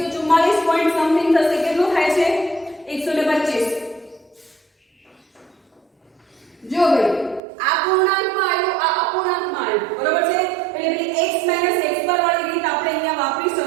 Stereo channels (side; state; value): left; drops out; at 7.4 s